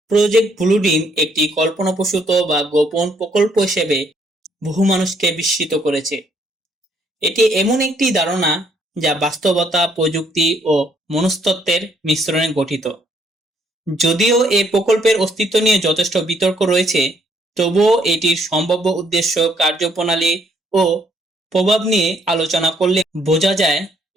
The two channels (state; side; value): normal; both; correlation 0.69